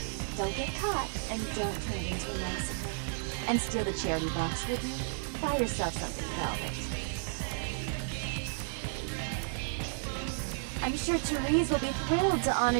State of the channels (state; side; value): silent; left; 55 dB below the other